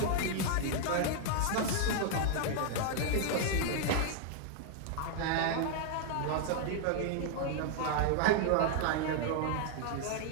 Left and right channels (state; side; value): different; both; correlation 0.00